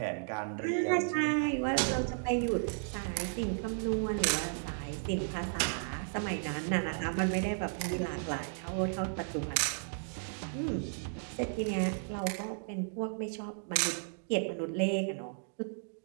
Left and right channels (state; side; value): silent; left; digital silence